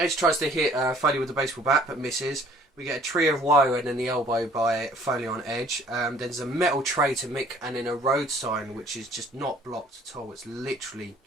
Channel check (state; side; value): normal; both; correlation 0.56